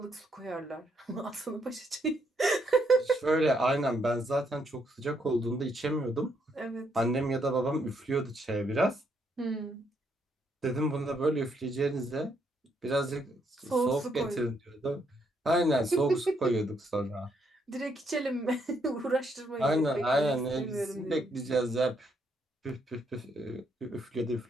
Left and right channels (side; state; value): both; normal; correlation 0.74